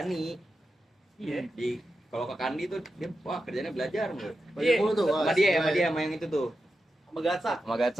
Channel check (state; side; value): normal; both; correlation 0.90